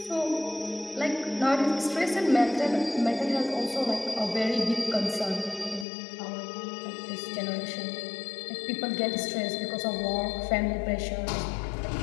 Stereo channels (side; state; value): right; drops out; at 5.9 s